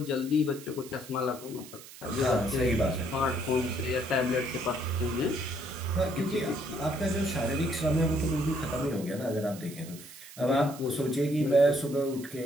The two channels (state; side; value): noise; right; hiss, 17 dB below the sound